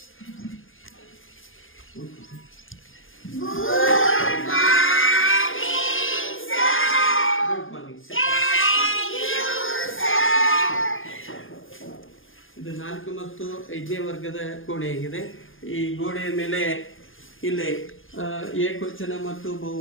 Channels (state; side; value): late; right; 0.59 ms